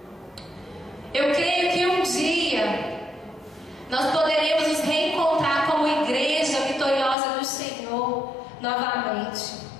Eu creio que um dia nós poderemos nos reencontrar como igreja vitoriosa do Senhor novamente.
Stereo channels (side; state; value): right; drops out; at 7.2 s